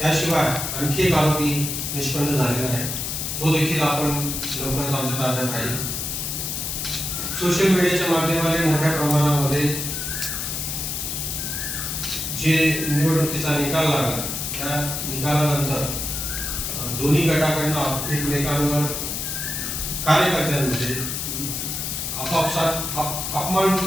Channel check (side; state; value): left; noise; hiss, 3 dB below the sound